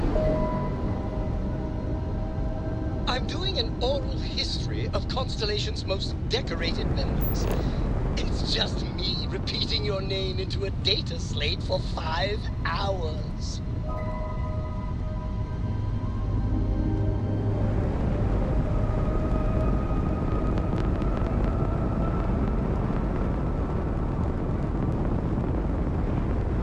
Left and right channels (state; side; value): identical; both; correlation 1.00